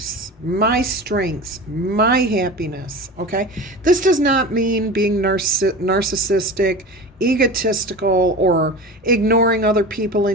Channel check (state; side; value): normal; both; correlation 0.32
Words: my strengths, my happiness, okay? This does not mean being narcissistic, egotistical, or ignoring other people